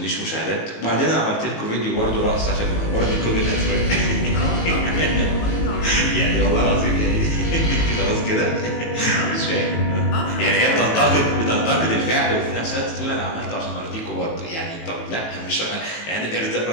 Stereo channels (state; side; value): late; right; 18 ms